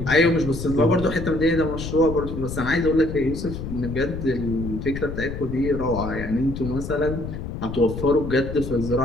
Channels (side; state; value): left; noise; rumble, 7 dB below the sound